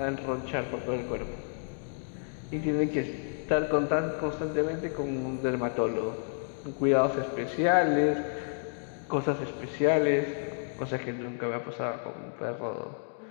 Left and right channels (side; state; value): right; silent; digital silence